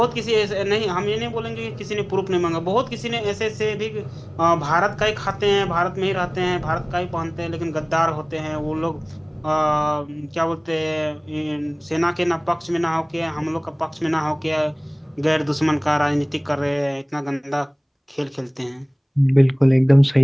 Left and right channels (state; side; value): identical; both; correlation 1.00